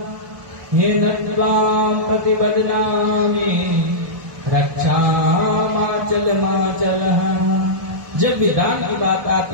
हे नत्वाम प्रतिबदनामि रक्षामाचल माचल। जब भी दान की बात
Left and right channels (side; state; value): left; late; 1.2 ms